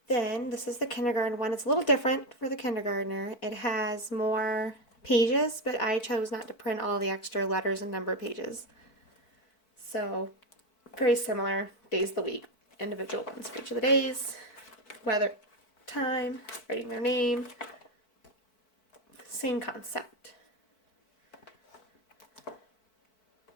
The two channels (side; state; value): right; late; 4.5 ms